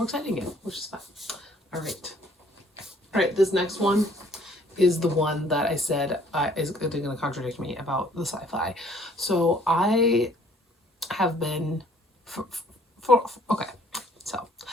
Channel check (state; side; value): normal; both; correlation 0.59